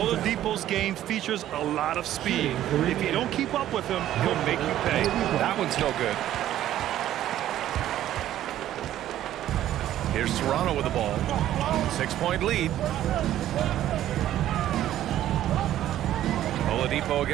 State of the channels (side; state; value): left; quieter; 12.6 dB